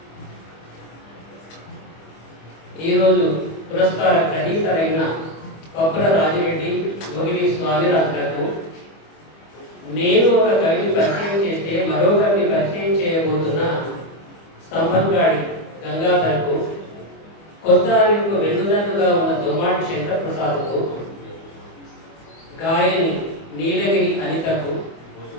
ఈరోజు పురస్కార గ్రహీతలైన పప్పుల రాజిరెడ్డి, గోగిలి స్వామిరాజులకు, నేను ఒక కవిని పరిచయం చేస్తే మరొకరిని పరిచయం చేయబోతున్న స్తంభంగాడి గంగాధర్కు, కొత్త అనిల్కు వెన్నుదన్నుగా ఉన్న దొమ్మాటి శంకర్ ప్రసాద్కు, గాయని నీలగిరి అనితకు,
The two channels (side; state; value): right; late; 25 ms